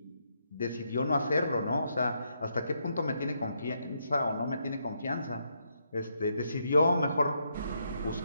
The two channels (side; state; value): both; inverted; correlation -0.78